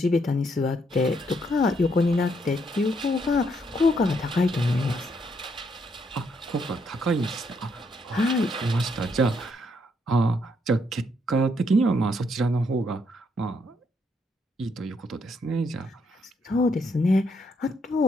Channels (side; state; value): both; normal; correlation 0.74